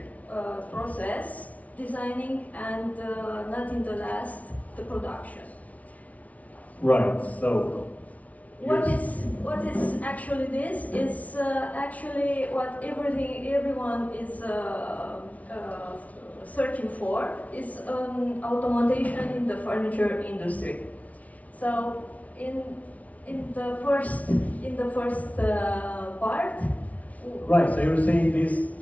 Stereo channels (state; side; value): late; right; 0.069 ms